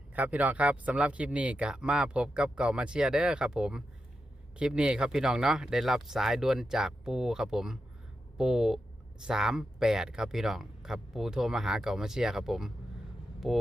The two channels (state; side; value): normal; both; correlation 0.88